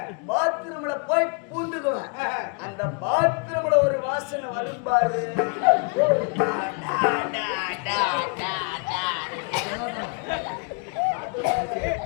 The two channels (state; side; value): quieter; right; 35.2 dB